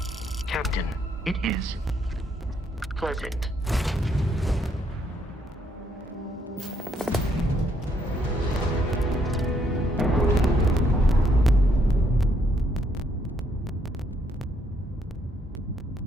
Captain, it is pleasant.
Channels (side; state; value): both; normal; correlation 0.72